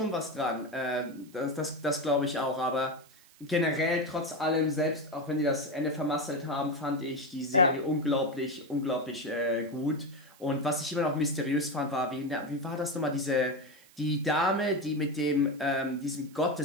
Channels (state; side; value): noise; right; hiss, 26 dB below the sound